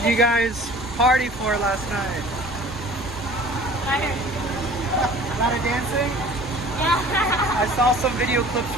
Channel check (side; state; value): left; noise; rumble, 18 dB below the sound